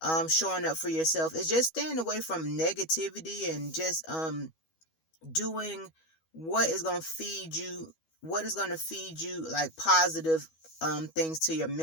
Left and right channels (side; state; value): right; late; 12 ms